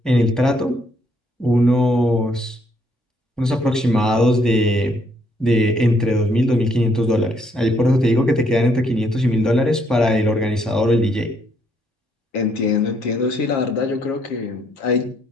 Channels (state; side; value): normal; both; correlation 0.70